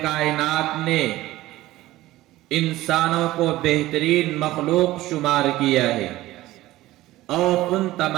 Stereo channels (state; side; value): quieter; left; 16.6 dB